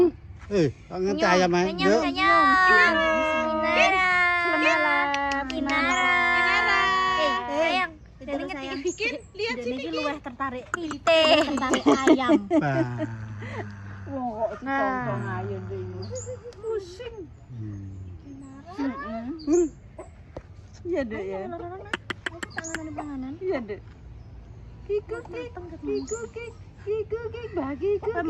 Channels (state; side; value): identical; both; correlation 1.00